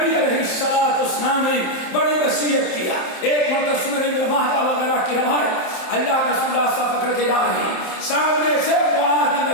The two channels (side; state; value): right; late; 27 ms